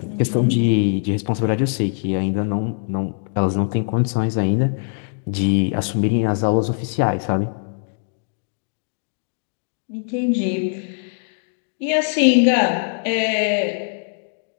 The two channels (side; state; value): right; silent; digital silence